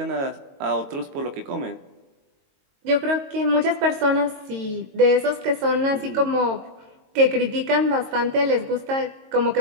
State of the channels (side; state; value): left; late; 22 ms